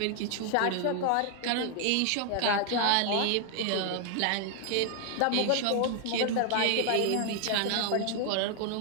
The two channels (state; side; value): different; both; correlation 0.00